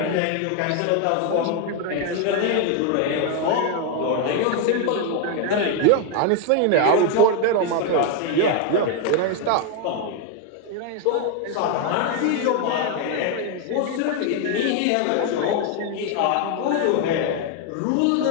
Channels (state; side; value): different; both; correlation 0.01